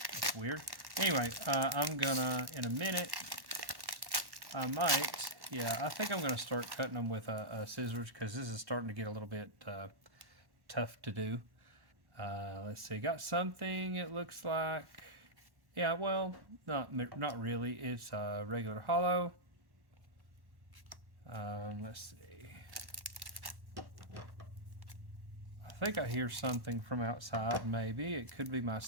weird. Anyway, I'm gonna, in a minute, I think I'm gonna start cutting them with scissors, because this is starting to get a little bit tough to do. Let's see, got something, it looks like. Yeah, well, not really. It's a regular holo. Let's see. I think I hear something from outside, maybe. It could be my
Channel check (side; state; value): left; late; 1.1 ms